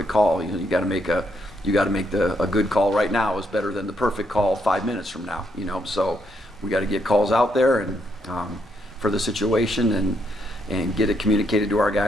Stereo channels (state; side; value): normal; both; correlation 0.76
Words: call. You got to make a good call right now is better than the perfect call 5 minutes from now. So we got to get calls out there and for the situation and get it communicated to our